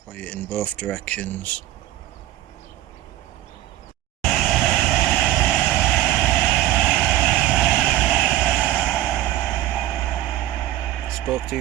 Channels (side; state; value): left; quieter; 14.4 dB